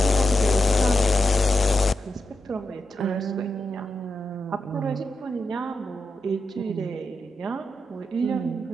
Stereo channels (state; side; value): normal; both; correlation 0.88